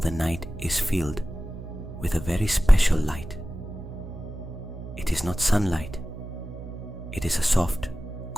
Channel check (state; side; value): noise; right; hum, 11 dB below the sound